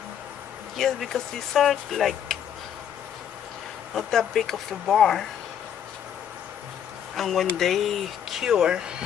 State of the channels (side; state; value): right; quieter; 9.1 dB